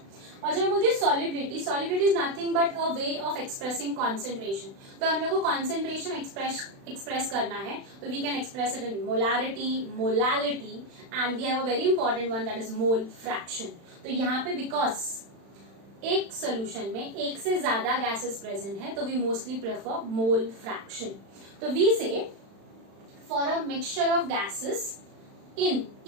और जब मैं बोलती हूँ solubility is nothing but a way of expressing concentration. तो हम लोग को कॉन्सेंट्रेशन एक्सप्रेस करना है तो we can express it in molarity, molality and we have a very important one that is mole fraction. तो यहाँ पे बिकॉज एक सोल्यूशन में एक से ज्यादा गैसेस प्रेजेंट है तो we mostly prefer mole fraction. तो we say for a mixture of gases in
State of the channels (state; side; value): late; left; 36 ms